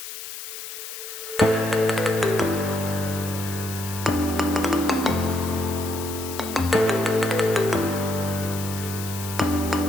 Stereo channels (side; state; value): left; noise; hiss, 10 dB below the sound